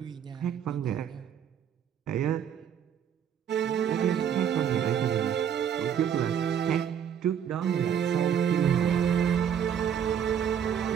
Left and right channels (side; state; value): left; quieter; 8.6 dB